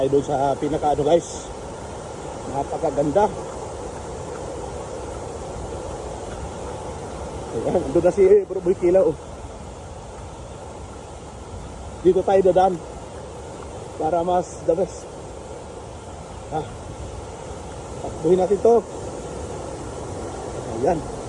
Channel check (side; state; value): both; identical; correlation 1.00